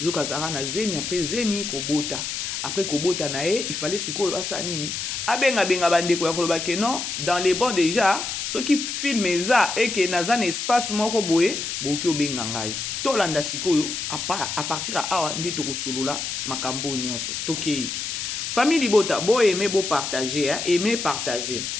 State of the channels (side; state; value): left; noise; hiss, 4 dB below the sound